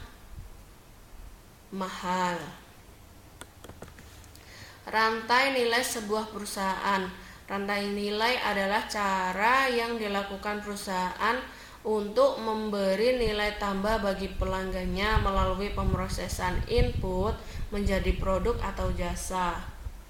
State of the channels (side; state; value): both; identical; correlation 1.00